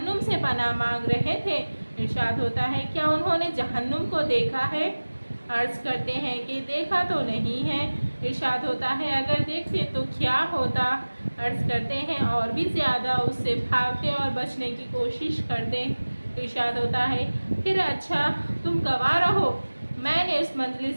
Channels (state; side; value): inverted; both; correlation -1.00